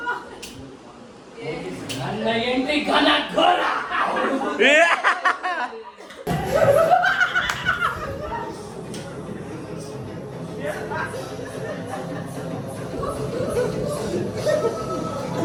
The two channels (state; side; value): identical; both; correlation 1.00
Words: ನನ್ನ ಎಂಟ್ರಿ ಘನ ಘೋರ.